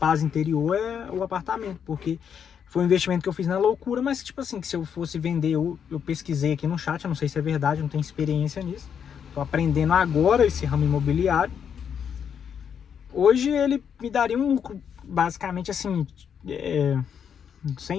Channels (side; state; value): right; quieter; 7.8 dB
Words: interior é o apartamento, porque foi um investimento que eu fiz na loucura, mas tipo assim, que se eu fosse vender, eu pesquisei aqui no chat, eu não sei se é verdade, não tenho experiência nisso, tô aprendendo agora esse ramo imobiliário. Hoje ele me daria um lucro, basicamente assim,